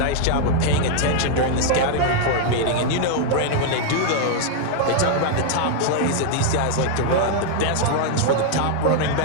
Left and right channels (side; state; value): both; different; correlation 0.00